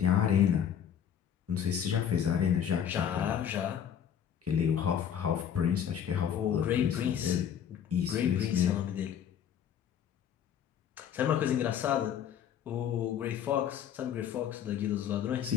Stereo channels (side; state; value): right; quieter; 8.9 dB